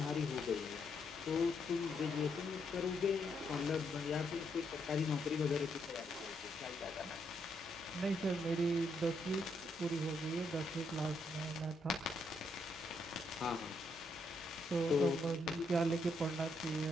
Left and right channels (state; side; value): normal; both; correlation 0.77